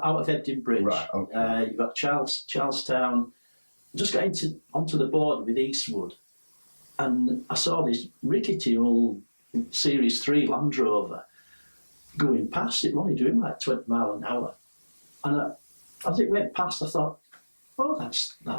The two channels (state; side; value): inverted; both; correlation -1.00